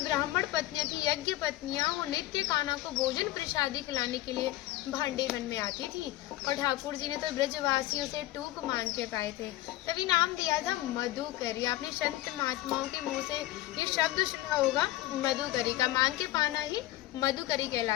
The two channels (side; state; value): right; quieter; 16.3 dB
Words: ब्राह्मण पत्नियाँ थी, यज्ञ पत्नियाँ, वो नित्य कान्हा को भोजन प्रसादी खिलाने के लिए भांडीर वन में आती थी। और ठाकुर जी ने तो ब्रजवासियों से टूक मांग के पाए थे, तभी नाम दिया था मधुकरी। आपने संत महात्माओं के मुंह से ये शब्द सुना होगा, मधुकरी का मांग के पाना ही मधुकरी